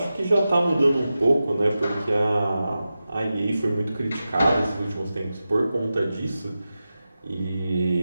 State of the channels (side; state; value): both; inverted; correlation -0.93